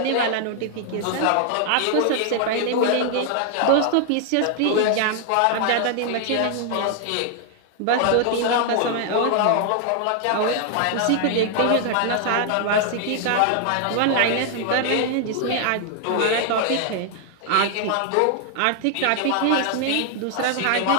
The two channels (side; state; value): both; different; correlation 0.00